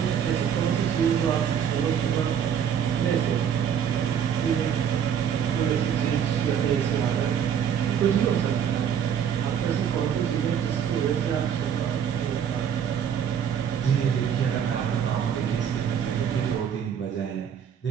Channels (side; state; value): left; quieter; 8.4 dB